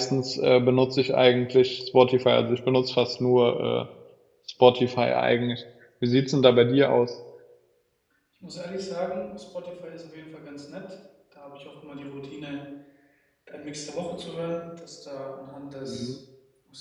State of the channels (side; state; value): both; identical; correlation 1.00